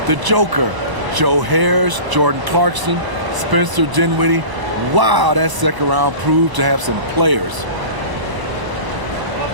the Joker, Joe Harris, Jordan Clarkson, Spencer Dinwiddie. Wow, that second round proved to have some players.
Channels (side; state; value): left; late; 1.0 ms